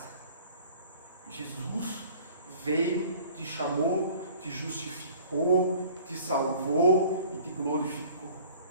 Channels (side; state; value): both; inverted; correlation -0.49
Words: Jesus veio, te chamou, te justificou, te salvou e te glorificou.